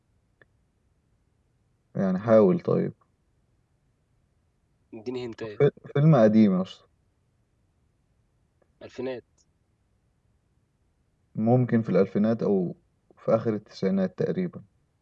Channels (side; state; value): both; identical; correlation 1.00